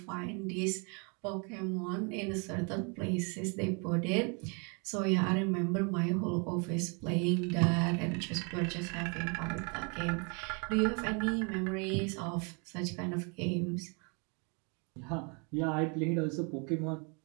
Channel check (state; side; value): quieter; left; 34.6 dB